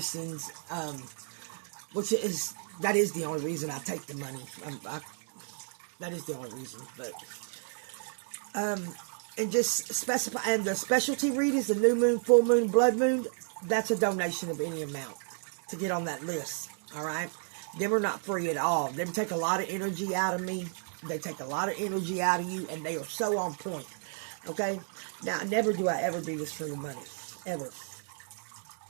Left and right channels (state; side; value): silent; left; 56 dB below the other